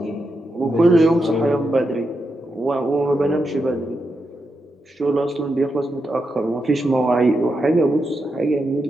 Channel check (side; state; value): both; normal; correlation 0.85